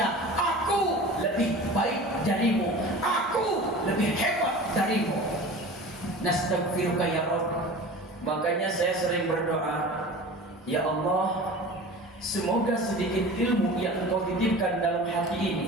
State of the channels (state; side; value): normal; both; correlation 0.37